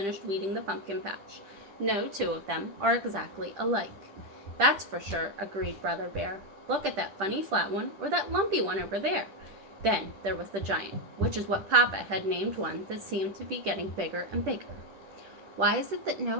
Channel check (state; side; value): late; left; 10 ms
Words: weeding the pumpkin patch. No two of them are exactly alike. That's for sure, agreed Brother Bear. Look at that funny flat one or that lumpy one over there. Then there was the giant, which is what Papa had named one that seemed to be getting bigger and bigger. Why is it that